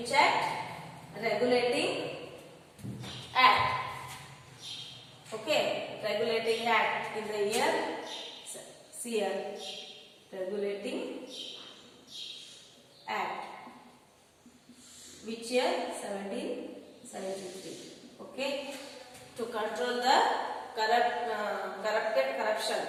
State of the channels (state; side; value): identical; both; correlation 1.00